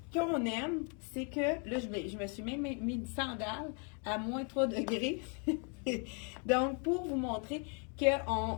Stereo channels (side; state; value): right; quieter; 38.7 dB